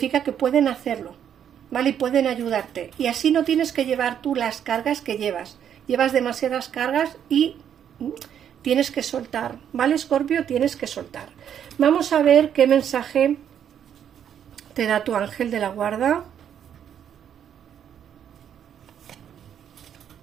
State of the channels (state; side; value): quieter; left; 9.1 dB